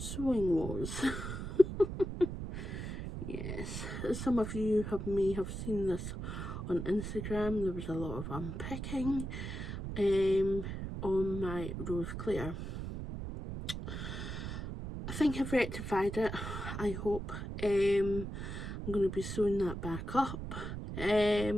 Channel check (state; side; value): noise; right; rumble, 6 dB below the sound